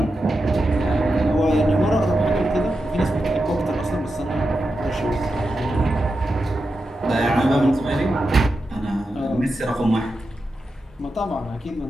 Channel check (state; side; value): normal; both; correlation 0.89